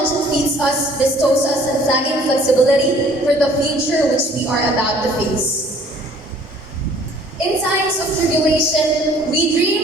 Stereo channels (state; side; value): normal; both; correlation 0.55